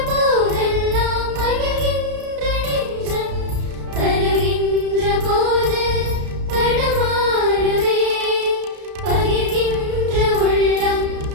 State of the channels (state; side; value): late; left; 33 ms